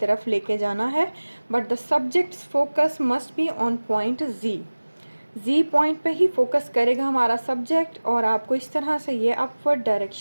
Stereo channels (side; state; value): both; inverted; correlation -1.00